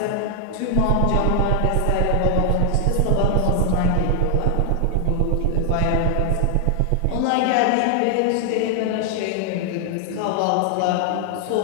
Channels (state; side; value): different; both; correlation 0.00